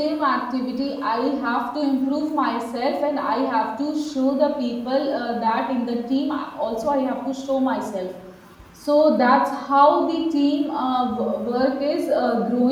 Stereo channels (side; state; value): both; identical; correlation 1.00